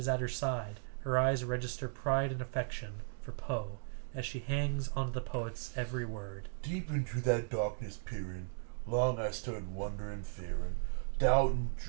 at her side. Her eyes register pride and affection for Poe as she hangs onto the poet's every word. Deep into that darkness peering, long I stood wondering, fearing, doubting,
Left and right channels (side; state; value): left; silent; digital silence